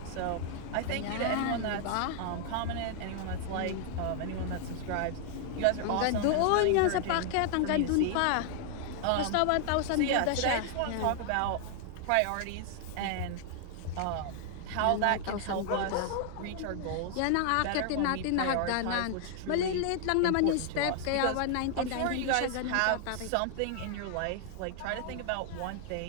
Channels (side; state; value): both; different; correlation 0.00